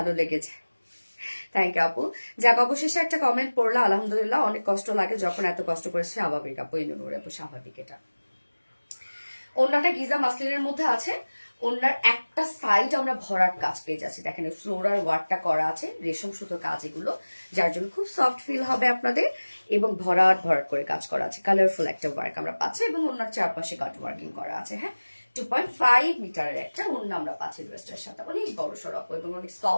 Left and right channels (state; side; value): inverted; both; correlation -1.00